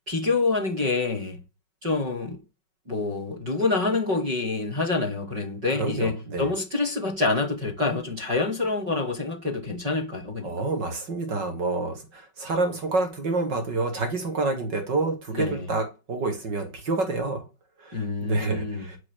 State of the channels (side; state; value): left; late; 5.3 ms